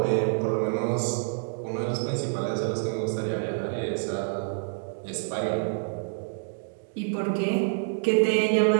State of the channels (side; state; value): left; silent; digital silence